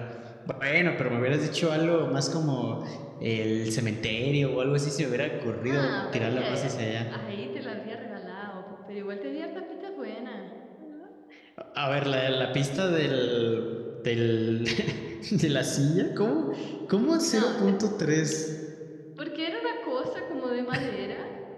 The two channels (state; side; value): identical; both; correlation 1.00